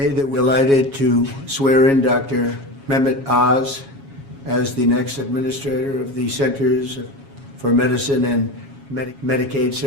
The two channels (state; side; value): late; left; 7.3 ms